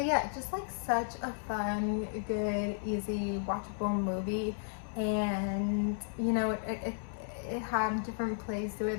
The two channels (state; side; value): silent; right; 55 dB below the other